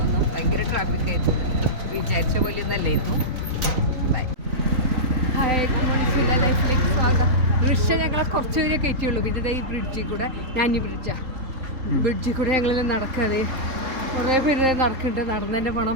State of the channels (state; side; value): late; left; 3.8 ms